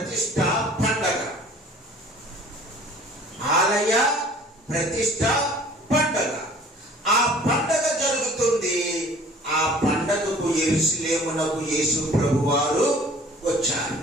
పండగ. ఆలయ ప్రతిష్ఠ పండగ. ఆ పండగ జరుగుతుంది. ఆ పండగకు యెరూషలేమునకు యేసు ప్రభువారు వచ్చారు.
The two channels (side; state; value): both; normal; correlation 0.50